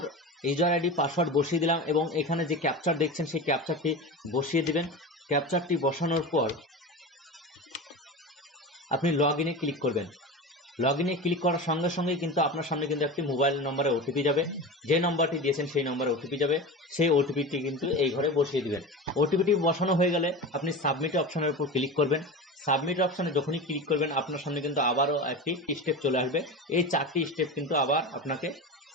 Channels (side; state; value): both; normal; correlation 0.28